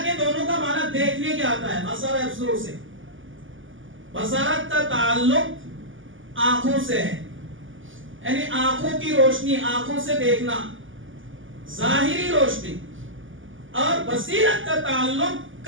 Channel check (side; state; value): left; late; 0.57 ms